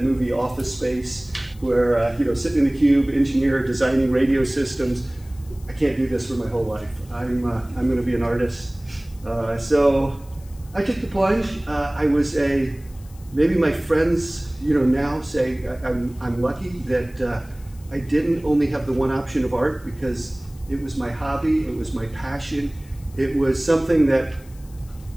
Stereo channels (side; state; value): left; noise; hiss, 26 dB below the sound